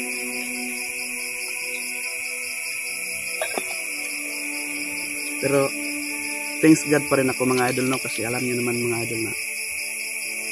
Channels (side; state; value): both; identical; correlation 1.00